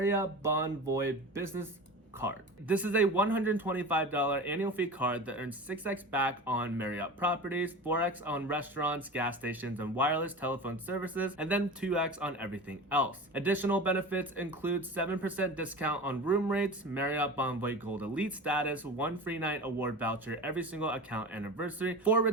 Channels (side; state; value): both; normal; correlation 0.32